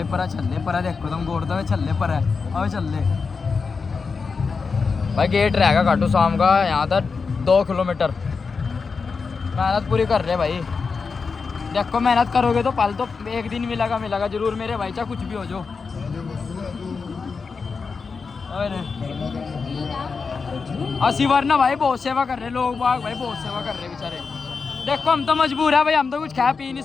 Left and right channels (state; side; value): quieter; right; 5.0 dB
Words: परा चल परा देखो तुम गोड़ दे चल पर है आवे चल भाई। गेट रहेगा खाटू शाम का यहाँ तक 2 किलोमीटर। मेहनत पूरी कर रहे भाई। देखो मेहनत करोगे तो पल तो एक दिन मिलेगा जरूर मेरे भाई, चाहे कुछ भी हो जो। अरे असी वरना भाई बहुत सेवा कर रहे लोग बाग भाई, बहुत सेवा कर रहे बेचारे। देखो हम तो मजबूर है भाई, हम तो कुछ खा पी नहीं